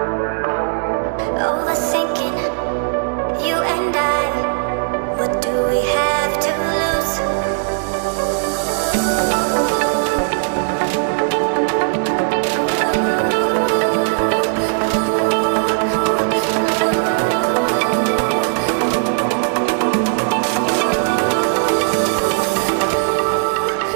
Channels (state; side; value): silent; left; digital silence